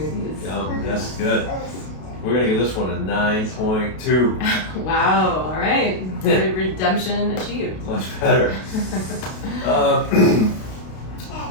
Yeah, that's good. We're going to give this one a 9.2. Wow, all right. Redemption achieved. Much better.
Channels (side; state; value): right; late; 32 ms